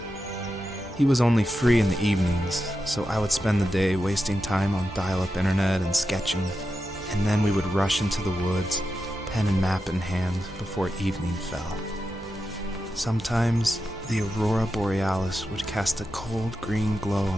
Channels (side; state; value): both; normal; correlation 0.89